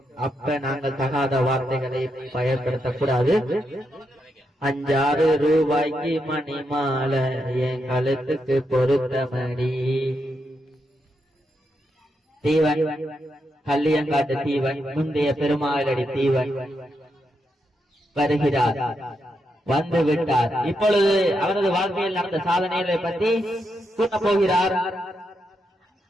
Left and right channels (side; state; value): both; normal; correlation 0.83